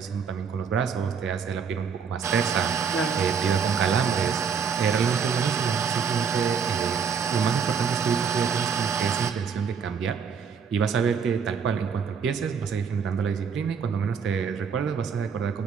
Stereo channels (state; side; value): quieter; left; 6.4 dB